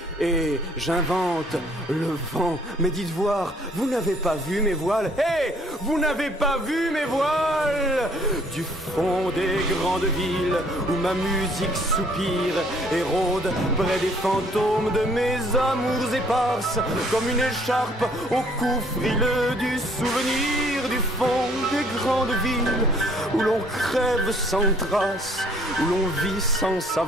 et j'invente le vent. Mais dites voir, vous n'avez pas vu mes voiles? Hé, vous n'avez pas vu mes voiles? Du fond des grandes villes où ma musique soupire et rôde près des fantômes de mes amours éparses, comme une écharpe au cou frileux du souvenir, du fond des grandes villes où l'on crève sans trace, où l'on vit sans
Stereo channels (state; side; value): normal; both; correlation 0.61